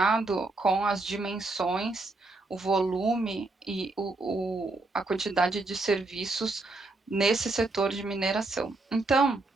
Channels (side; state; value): left; quieter; 3.2 dB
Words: com as dimensões, o volume e a quantidade de serviços nesse setor de mineração. Então,